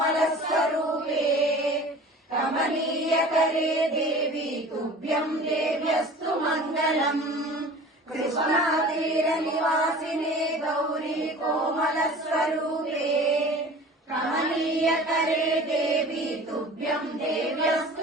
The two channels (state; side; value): normal; both; correlation 0.42